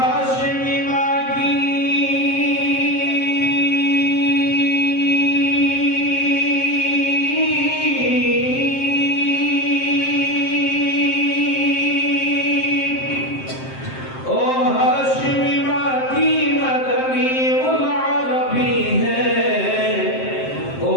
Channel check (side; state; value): right; late; 7.6 ms